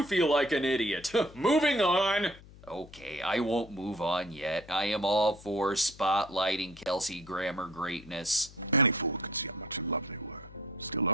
feel like an idiot? Moving on! Okay, I won't move on yet. I am all for spotlighting Kelsey Grammer greatness. Any fool could see how much in love they were. Still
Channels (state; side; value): noise; left; hum, 20 dB below the sound